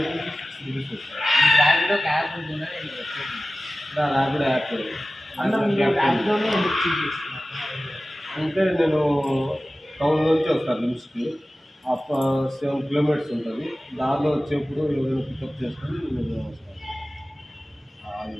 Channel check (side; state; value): both; normal; correlation 0.96